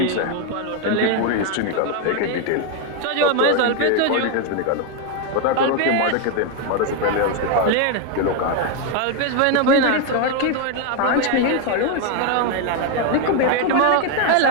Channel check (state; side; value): different; both; correlation 0.01